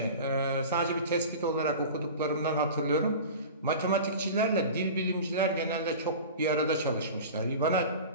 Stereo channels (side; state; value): both; inverted; correlation -0.35